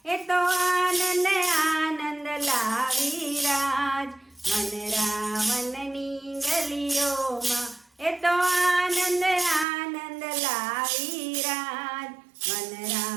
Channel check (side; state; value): left; drops out; at 9.7 s